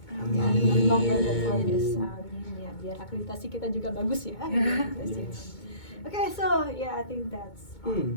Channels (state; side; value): late; right; 2.2 ms